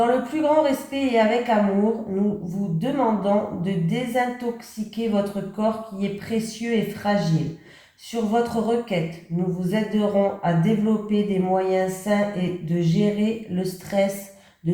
le plus grand respect et avec amour, nous vous demandons de désintoxiquer votre corps qui est précieux et fragile. Sur votre requête, nous vous aiderons à développer des moyens sains et de gérer le stress, de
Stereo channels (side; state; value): both; identical; correlation 1.00